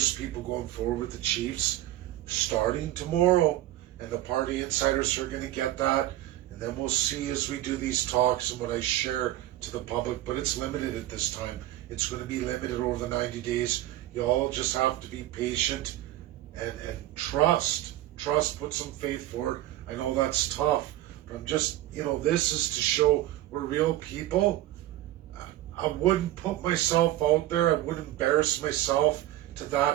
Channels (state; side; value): quieter; left; 14.8 dB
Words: people going forward with the Chiefs starting tomorrow. And the party insiders are going to get that. And then we'll see as we do these talks and what I share to the public. But it's limited at this time. It's going to be limited over the 90 days. You all just have to be patient and trust. Put some faith forward. I know that's tough. But I'm just, this is to show we're real people. I wouldn't put myself out there. I wouldn't embarrass myself to